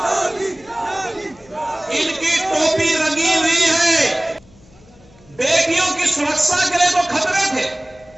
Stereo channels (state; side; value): noise; left; hum, 27 dB below the sound